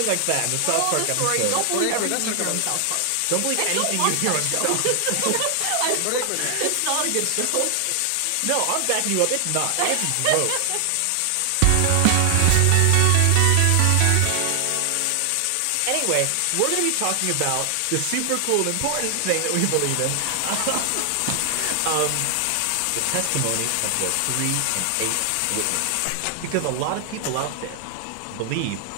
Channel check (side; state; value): both; different; correlation 0.00